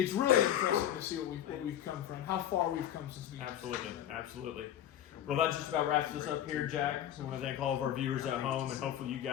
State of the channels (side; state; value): right; quieter; 11.1 dB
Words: really impressive to see what we've come from, how far we've come since we. Absolutely. Well, that just about wraps us up here, Jack. I want to thank all of our viewers at home, and hopefully you